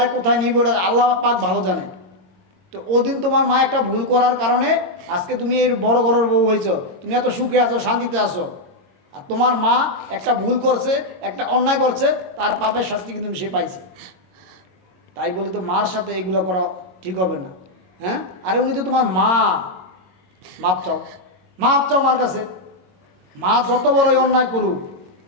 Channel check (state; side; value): late; left; 22 ms